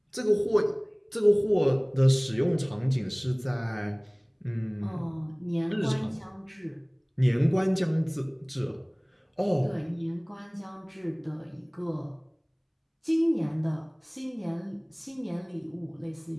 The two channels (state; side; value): identical; both; correlation 1.00